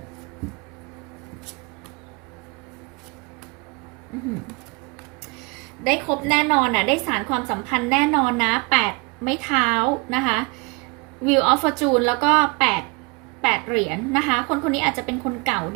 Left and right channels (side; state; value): left; quieter; 28.9 dB